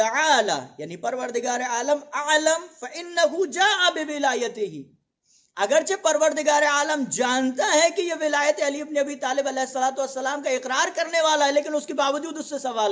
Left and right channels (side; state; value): both; identical; correlation 1.00